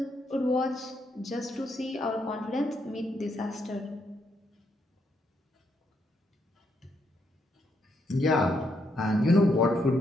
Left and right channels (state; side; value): normal; both; correlation 0.77